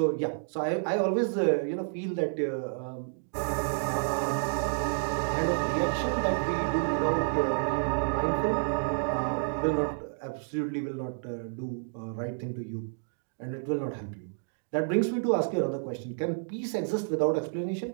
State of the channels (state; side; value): silent; left; digital silence